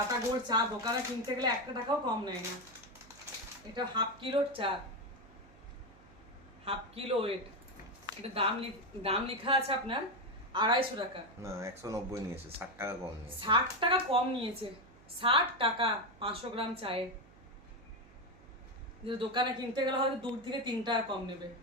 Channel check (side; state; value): right; noise; hum, 24 dB below the sound